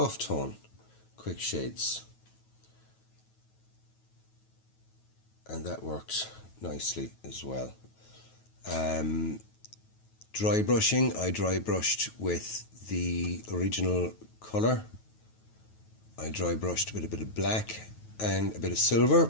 Tone Quick Shades, and that worked nicely as well. Dry brushing, I dry brushed with the original colour. I dry brushed with a bit of black and a bit of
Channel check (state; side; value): late; right; 9.3 ms